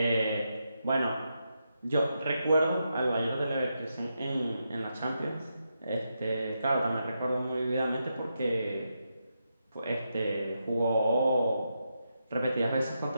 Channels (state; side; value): inverted; both; correlation -0.84